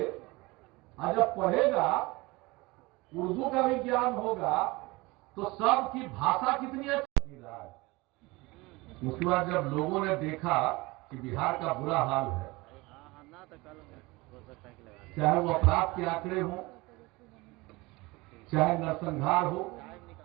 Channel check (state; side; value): quieter; left; 22.8 dB